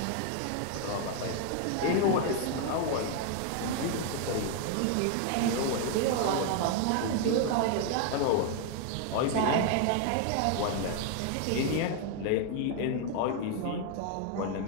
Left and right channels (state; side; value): different; both; correlation 0.00